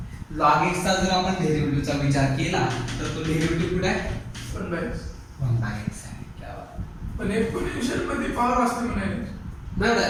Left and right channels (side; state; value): both; identical; correlation 1.00